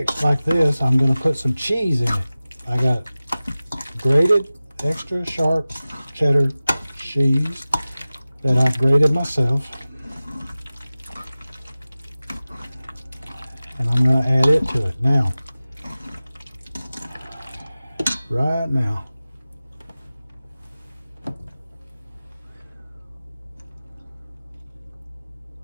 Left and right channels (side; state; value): both; inverted; correlation -0.96